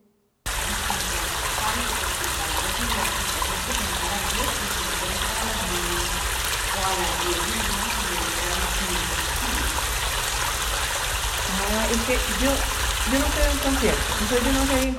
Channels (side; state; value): both; identical; correlation 1.00